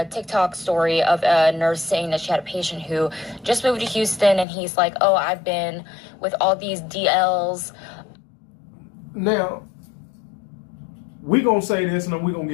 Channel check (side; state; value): right; drops out; at 4.5 s